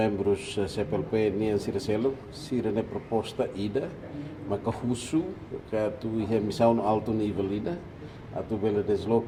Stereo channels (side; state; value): both; identical; correlation 1.00